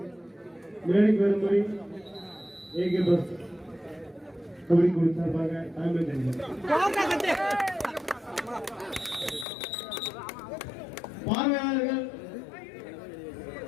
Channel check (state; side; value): drops out; right; at 9.5 s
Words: மேடைக்கு வரும்படி ஏகே பஸ் கபடி குழு சார்பாக பார்வையாளர்கள்